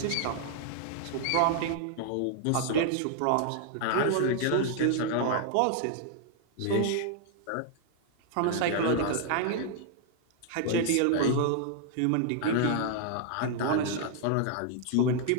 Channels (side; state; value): both; different; correlation 0.00